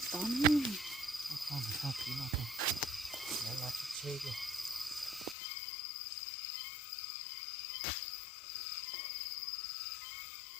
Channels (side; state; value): right; drops out; at 5.4 s